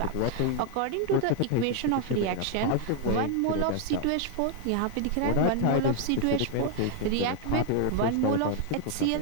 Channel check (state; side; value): different; both; correlation 0.00